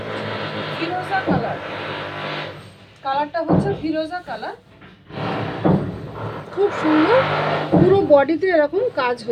ফিরোজা কালার, কালারটা হচ্ছে ফিরোজা কালার, খুব সুন্দর। পুরো বডিতে এরকম কাজ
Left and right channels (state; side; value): identical; both; correlation 1.00